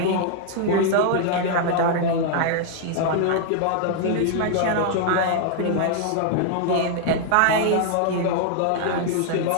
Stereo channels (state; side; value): different; both; correlation 0.00